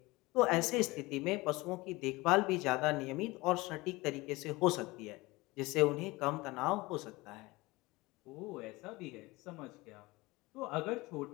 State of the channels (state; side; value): quieter; right; 21.9 dB